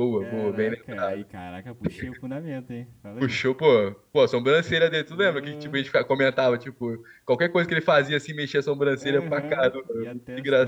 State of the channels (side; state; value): both; identical; correlation 1.00